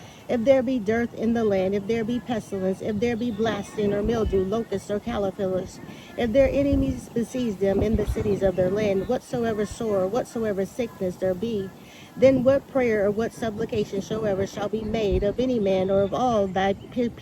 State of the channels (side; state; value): both; identical; correlation 1.00